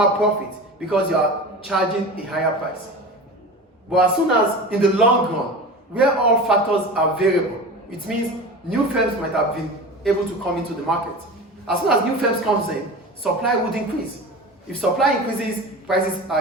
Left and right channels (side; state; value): both; normal; correlation 0.32